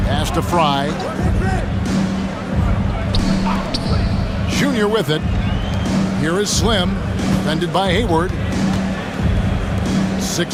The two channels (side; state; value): both; identical; correlation 1.00